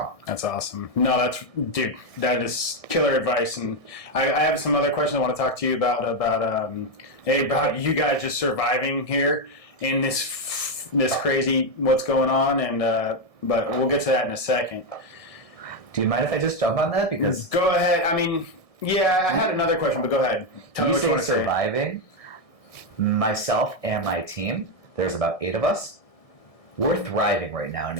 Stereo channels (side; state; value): right; late; 1.6 ms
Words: That's awesome. No, that is killer advice. And I have some other questions I want to talk to you about you guys just surviving here in this crazy what's going on. And but we'll get to that in a second. Do you mind if I just jump on that? Because go ahead. I mean, yeah, I had another question, but go ahead. Tell me what you want to say. Surviving. Myself and my team, there's about 8 of us. We're thriving right now, and